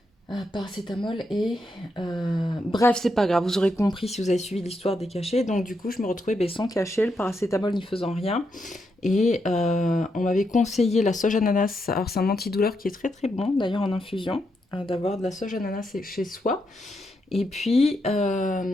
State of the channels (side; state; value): both; normal; correlation 0.82